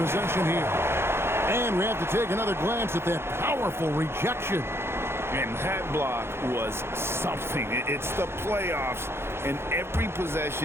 here. And we have to take another glance at that powerful rejection. And that block was something. It's the playoffs, and every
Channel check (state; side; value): late; left; 0.12 ms